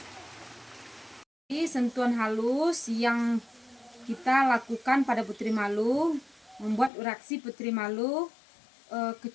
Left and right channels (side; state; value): right; drops out; at 6.9 s